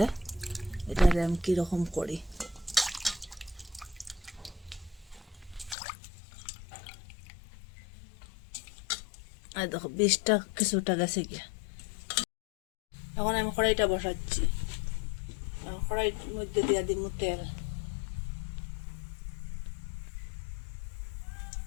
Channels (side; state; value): right; drops out; at 5.8 s